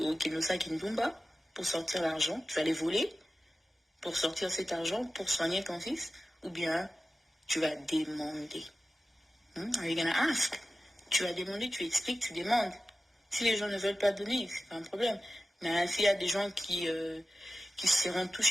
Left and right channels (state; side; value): normal; both; correlation 0.94